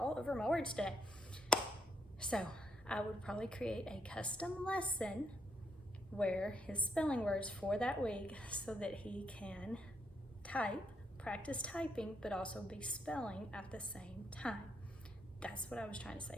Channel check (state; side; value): normal; both; correlation 0.76